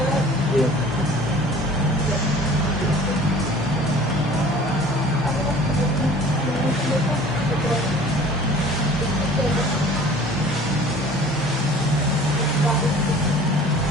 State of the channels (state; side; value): normal; both; correlation 0.47